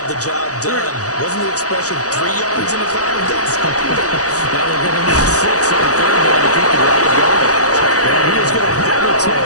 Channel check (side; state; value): right; late; 0.66 ms